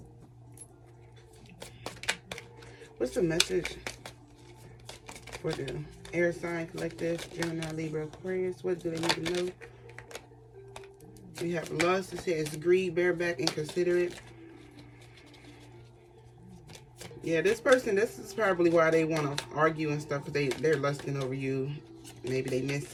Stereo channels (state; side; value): identical; both; correlation 1.00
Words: what's the message for the air sign collective, Gemini, Libra, Aquarius? What do they need to know? We have lust. It says greed, bareback, inconsiderate. Yeah, this person, this is probably why they want to argue and stuff, because they're lusting over you. Maybe they miss